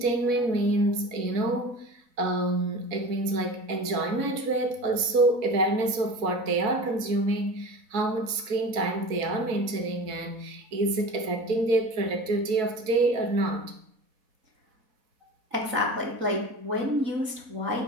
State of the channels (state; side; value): late; left; 4.1 ms